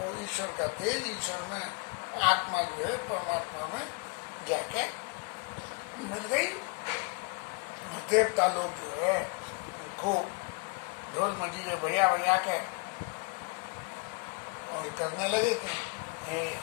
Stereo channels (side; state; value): right; quieter; 33.6 dB